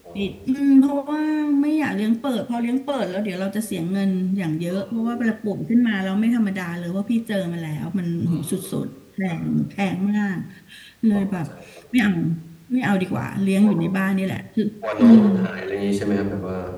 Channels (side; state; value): both; identical; correlation 1.00